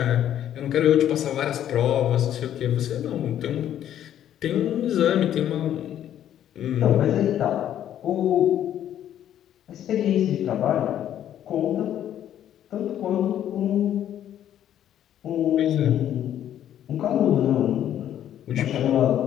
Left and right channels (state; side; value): quieter; right; 10.9 dB